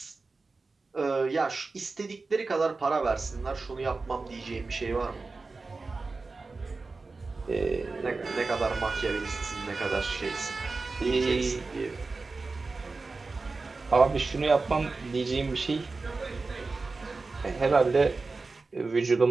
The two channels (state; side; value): quieter; left; 3.8 dB